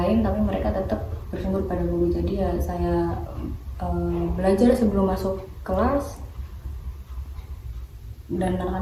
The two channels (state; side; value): identical; both; correlation 1.00